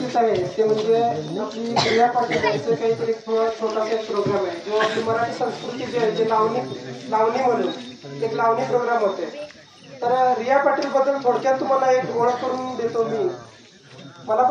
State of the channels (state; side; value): identical; both; correlation 1.00